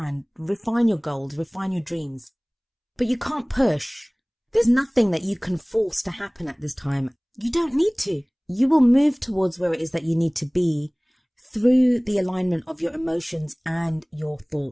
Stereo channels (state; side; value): identical; both; correlation 1.00